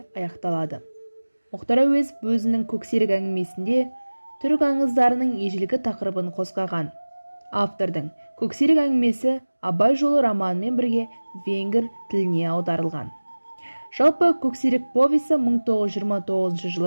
аяқталады. Мұхтар Әуезов өзінің көксерек әңгімесінде түрік аңыздарының ежелгі тақырыбын қозғаған. Автордың көксерек әңгімесі Абай жолы романымен бірге венгр тіліне аударылған. Жалпы көксерек повесі 1929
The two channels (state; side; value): inverted; both; correlation -1.00